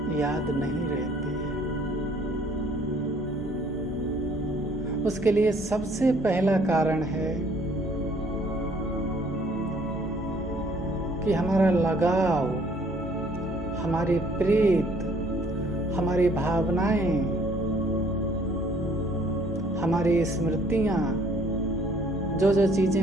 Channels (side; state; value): both; normal; correlation 0.60